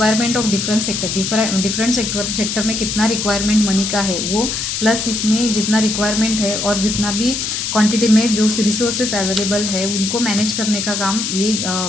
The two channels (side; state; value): left; noise; hiss, 2 dB below the sound